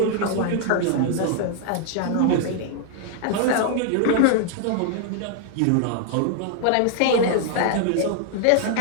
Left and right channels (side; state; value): both; different; correlation 0.00